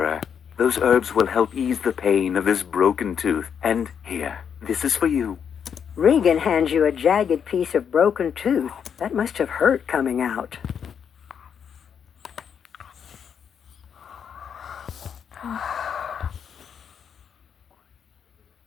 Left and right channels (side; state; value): right; quieter; 7.6 dB